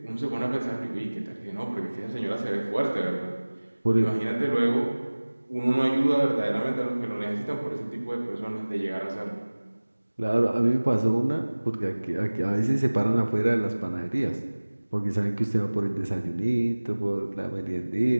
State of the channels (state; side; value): inverted; both; correlation -1.00